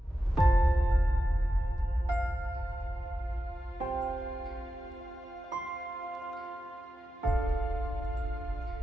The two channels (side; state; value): both; normal; correlation 0.89